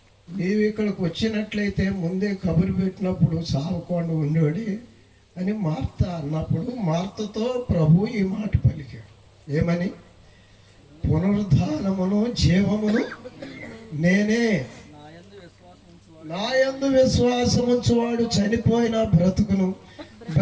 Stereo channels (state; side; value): identical; both; correlation 1.00